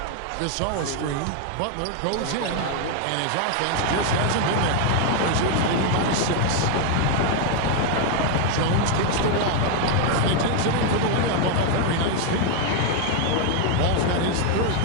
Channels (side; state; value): both; different; correlation 0.01